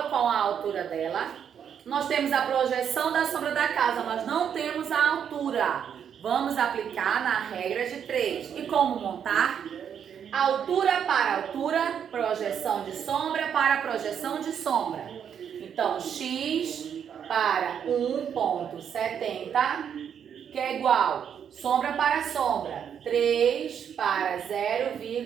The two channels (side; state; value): left; quieter; 8.2 dB